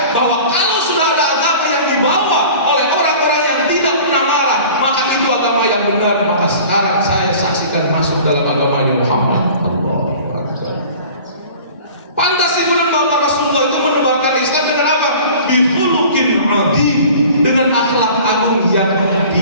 bahwa kalau sudah ada agama yang dibawa oleh orang-orang yang tidak pernah marah, maka itu agama yang benar. Maka sekarang saya saksikan masuk dalam agamanya Muhammad. Pantas ibu dan bapak Rasulullah itu menebarkan Islam dengan apa? Bihulukin adi, dengan akhlak agung yang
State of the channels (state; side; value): inverted; both; correlation -0.44